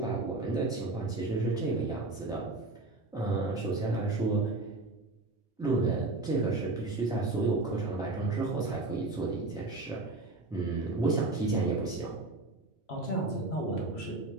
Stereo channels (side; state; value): left; quieter; 3.1 dB